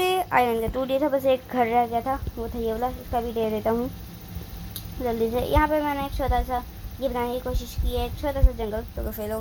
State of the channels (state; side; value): identical; both; correlation 1.00